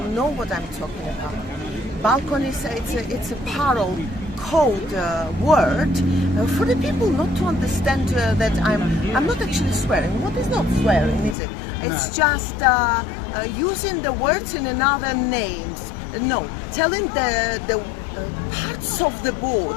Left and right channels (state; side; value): drops out; right; at 11.4 s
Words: know what I'm talking about. Balconies, it's a parallel code word for the people not to understand that I'm not actually swearing. What is not swearing, is it? It's just using the words in another names. No, telling the parts of the